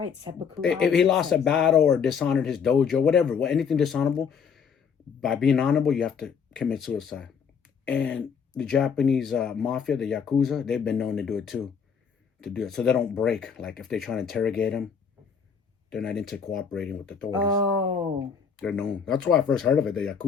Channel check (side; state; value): right; quieter; 6.6 dB